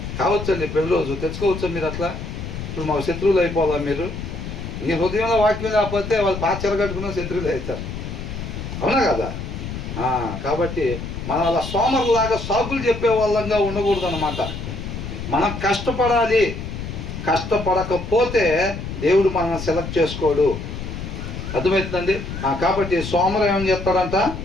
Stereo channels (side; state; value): left; noise; rumble, 7 dB below the sound